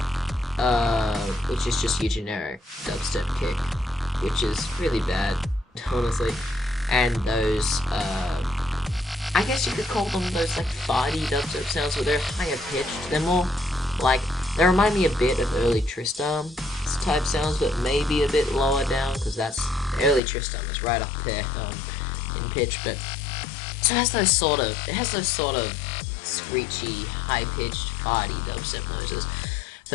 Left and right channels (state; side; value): drops out; right; at 20.2 s